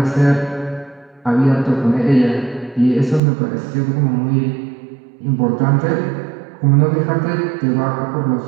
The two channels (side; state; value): left; drops out; at 3.2 s